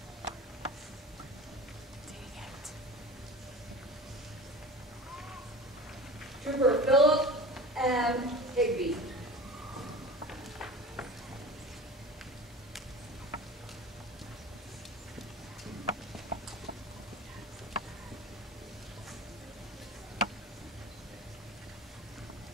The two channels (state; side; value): normal; both; correlation 0.36